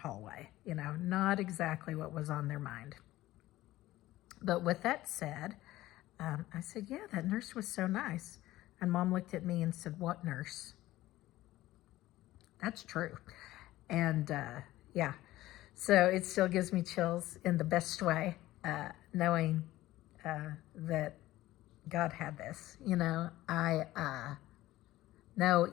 not exactly what was on their mind. But with that said, I said, yeah, that nurse was so nice. And Mom looked at me and said, what nurse? That's true. And yeah, so it still gives me chills in the best way, knowing that God had this. I know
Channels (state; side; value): quieter; right; 16.2 dB